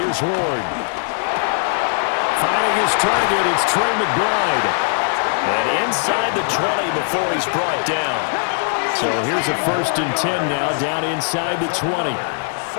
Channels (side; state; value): right; silent; 66 dB below the other